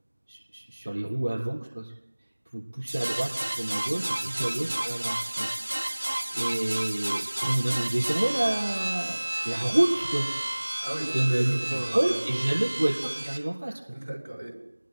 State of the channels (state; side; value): inverted; both; correlation -1.00